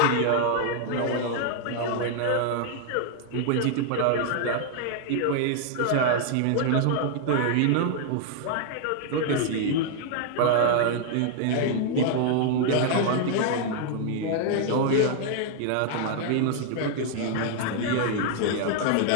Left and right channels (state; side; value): different; both; correlation 0.00